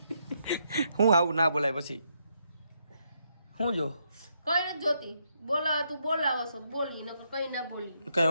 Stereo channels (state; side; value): inverted; both; correlation -0.77